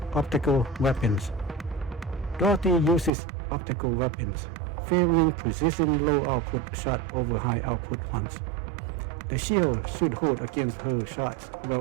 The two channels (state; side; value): drops out; left; at 3.1 s